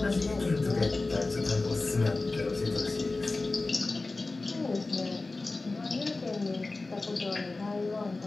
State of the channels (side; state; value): right; quieter; 3.4 dB